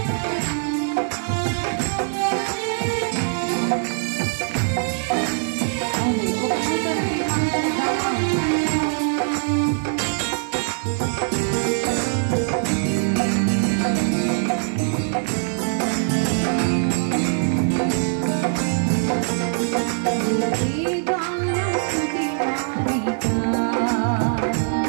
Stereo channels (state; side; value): silent; left; digital silence